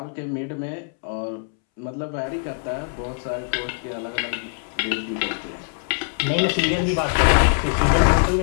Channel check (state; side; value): silent; right; 63 dB below the other